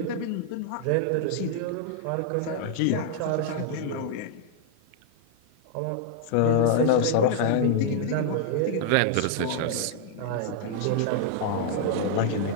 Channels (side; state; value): both; different; correlation -0.01